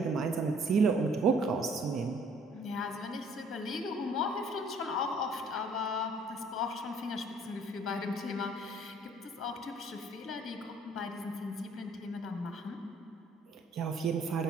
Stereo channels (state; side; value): normal; both; correlation 0.59